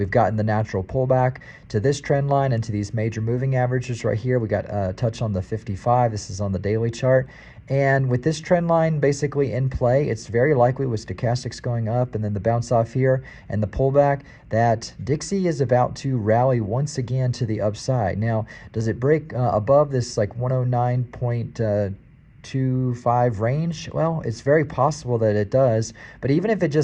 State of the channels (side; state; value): both; identical; correlation 1.00